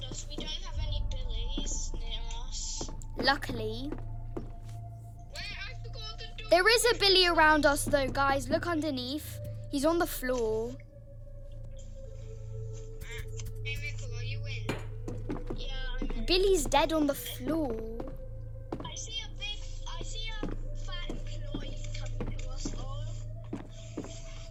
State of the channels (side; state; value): both; identical; correlation 1.00